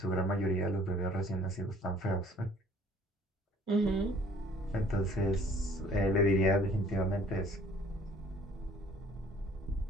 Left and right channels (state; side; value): normal; both; correlation 0.56